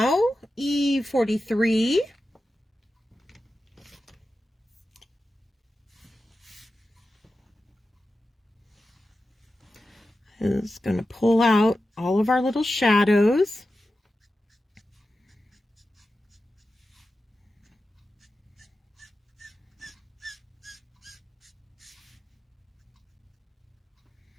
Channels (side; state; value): both; normal; correlation 0.92